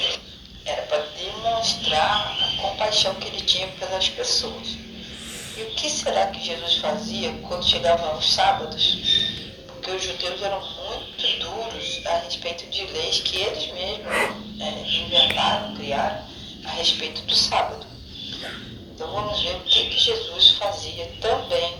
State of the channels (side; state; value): both; identical; correlation 1.00